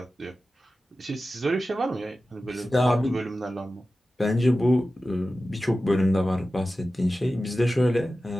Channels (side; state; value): both; normal; correlation 0.94